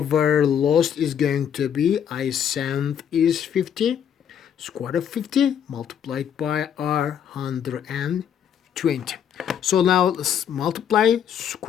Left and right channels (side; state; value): right; quieter; 8.8 dB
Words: lost is going to be I sent is 50, square of 50 multiplied by R 120. So now let's multiply